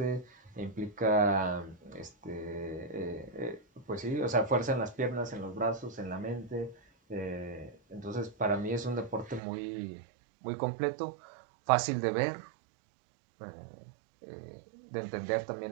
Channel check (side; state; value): left; drops out; at 9.4 s